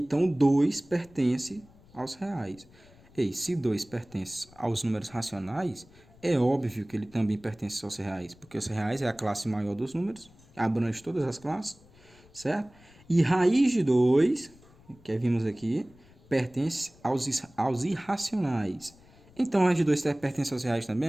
2 pertence aos reais. E se 2 pertence aos números racionais, é óbvio que ele também pertence aos reais, porque os reais é a classe maior dos números, abrange todas as classes, certo? E raiz de 2, que vimos aqui, pertence aos irracionais. Então, raiz de 2 pertence aos reais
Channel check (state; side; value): noise; left; rumble, 26 dB below the sound